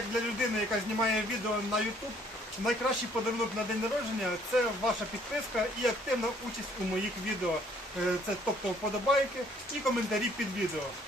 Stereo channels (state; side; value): normal; both; correlation 0.62